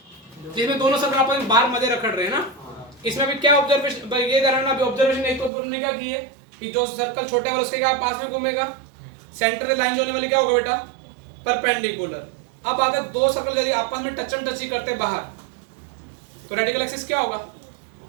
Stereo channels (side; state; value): left; drops out; at 5.5 s